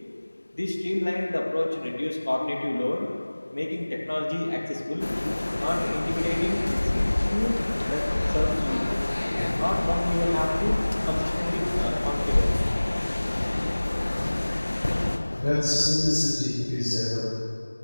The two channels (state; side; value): inverted; both; correlation -1.00